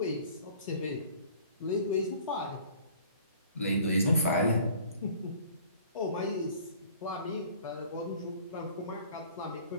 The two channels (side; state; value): both; inverted; correlation -0.50